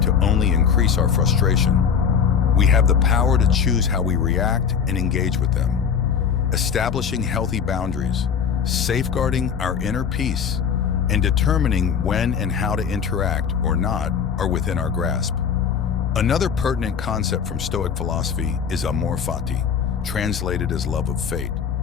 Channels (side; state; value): right; quieter; 7.1 dB